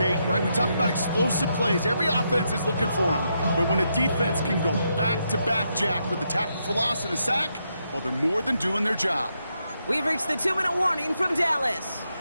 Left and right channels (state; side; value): inverted; both; correlation -0.81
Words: right? We talk about explosive plays. Every offense is looking for them. But when a defense can go back-to-back, Jack, with a tackle for loss and a sack, well, they're more than doing their job. We've reached the 2-minute warning from Dallas.